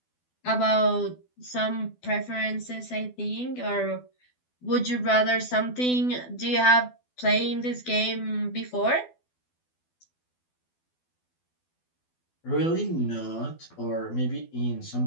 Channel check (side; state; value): right; late; 12 ms